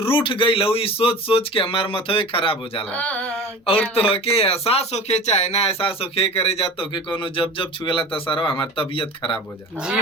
गई लहुई सोच सोच के हमार मथवे खराब हो जाला। और तो के एहसास होके चाहे ना एहसास होके करे जा तो के कोनो जब जब छुएला तो सारा हमार तबीयत खराब हो जाला। जी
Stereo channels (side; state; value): both; normal; correlation 0.37